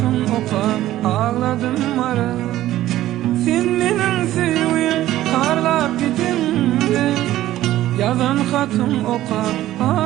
opa ağladım marıl. Sen menin sevgim karlap gidimdi. Yazan hatun opa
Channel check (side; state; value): left; quieter; 14.3 dB